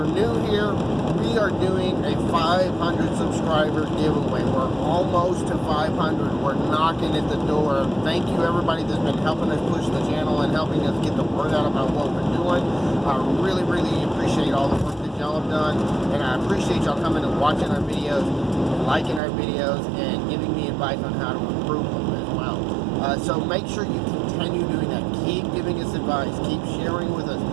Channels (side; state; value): left; drops out; at 19.2 s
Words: new here, we are doing a 500 subscriber giveaway. We're almost to 500. We're knocking at the door. Thank you everybody that's been helping us push the channel and helping us get the word out about what we're doing. I really appreciate all the work that y'all have done, and I appreciate y'all coming and watching our videos, liking our videos, and giving me advice on how to improve them as well. So make sure you continue doing that. Keep giving us advice. Keep sharing with us.